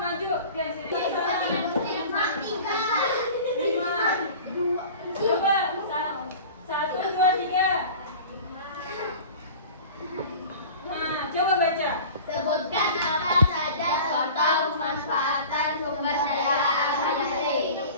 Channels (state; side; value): inverted; both; correlation -0.39